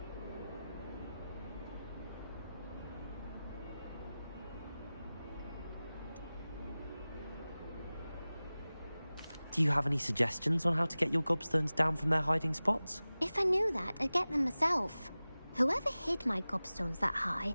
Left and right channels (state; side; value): inverted; both; correlation -0.97